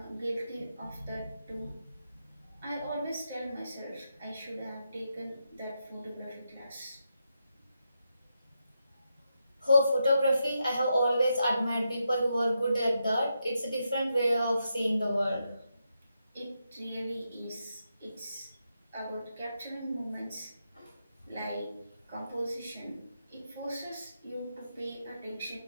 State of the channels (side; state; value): both; inverted; correlation -0.84